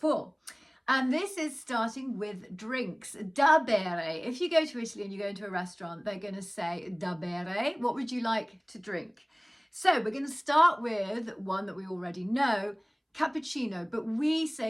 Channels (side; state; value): both; identical; correlation 1.00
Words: And this is starting with drinks, da bere. If you go to Italy and you go into a restaurant, they're going to say da bere. What would you like to drink? So we're going to start with one that we already know, cappuccino, but we